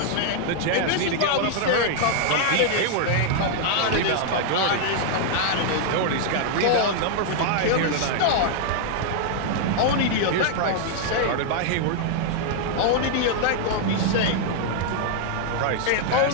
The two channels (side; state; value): both; different; correlation 0.00